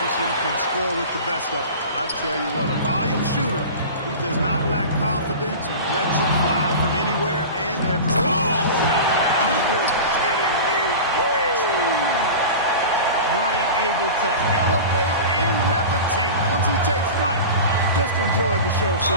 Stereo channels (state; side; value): inverted; both; correlation -0.32